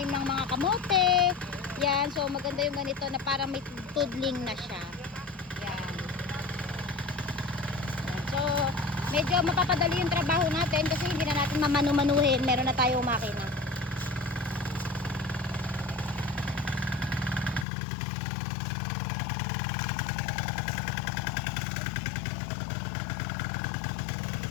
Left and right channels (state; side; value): drops out; right; at 17.7 s